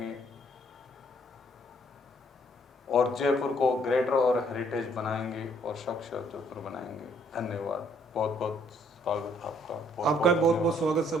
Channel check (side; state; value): both; normal; correlation 0.65